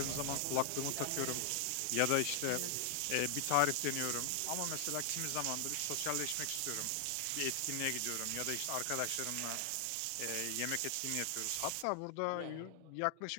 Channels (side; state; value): both; different; correlation 0.00